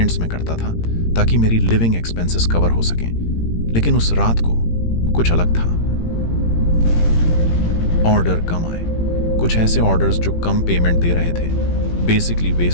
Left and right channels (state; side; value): late; right; 18 ms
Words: में करता था ताकि मेरी लिविंग एक्सपेंसेस कवर हो सकें, लेकिन उस रात को कुछ अलग था। ऑर्डर कम आए, कुछ ऐसे ऑर्डर्स जो कम पेमेंट दे रहे थे, basically